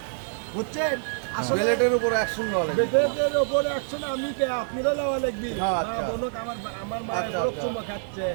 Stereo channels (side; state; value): left; silent; 57 dB below the other